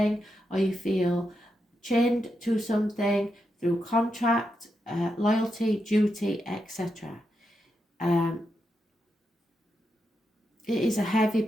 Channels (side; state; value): both; normal; correlation 0.85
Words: or you feel chained to something through contract, loyalty, duty, etc. it is a heavy